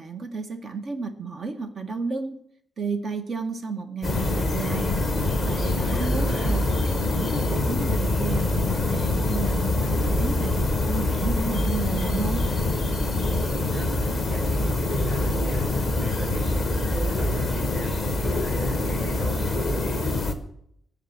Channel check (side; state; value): both; normal; correlation 0.78